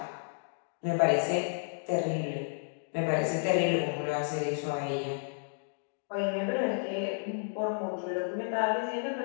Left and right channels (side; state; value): right; silent; digital silence